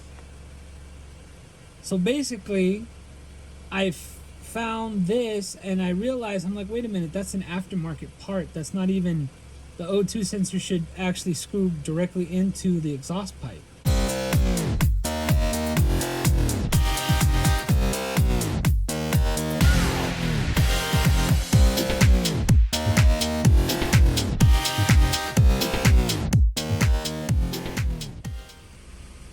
So basically, I found this and I realized, I'm like, wait a minute, that's an aftermarket part. That's not even, the O2 sensor should actually screw directly into the exhaust pipe.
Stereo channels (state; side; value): identical; both; correlation 1.00